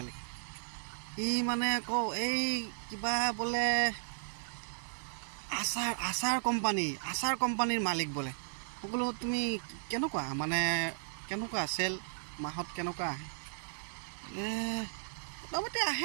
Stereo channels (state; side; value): silent; left; digital silence